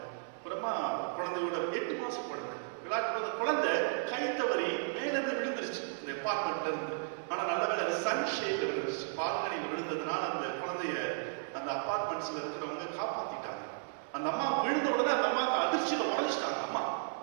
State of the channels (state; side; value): silent; left; digital silence